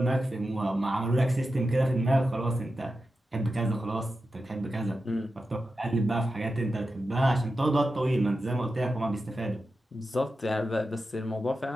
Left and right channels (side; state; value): both; normal; correlation 0.91